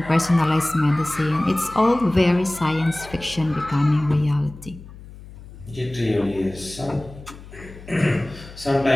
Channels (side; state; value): left; noise; hum, 17 dB below the sound